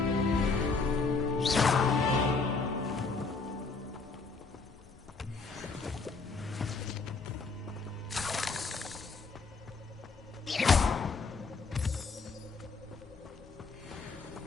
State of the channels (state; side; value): quieter; right; 4.3 dB